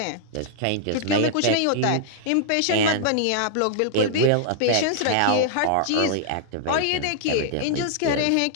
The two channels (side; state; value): both; different; correlation -0.01